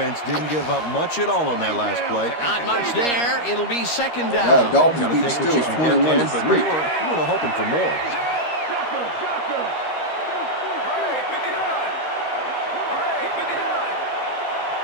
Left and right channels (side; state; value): right; late; 13 ms